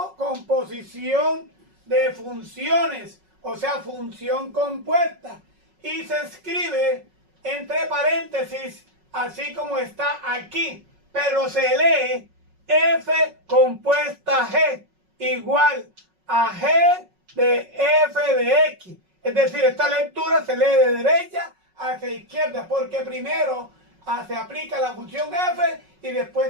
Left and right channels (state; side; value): late; left; 5.4 ms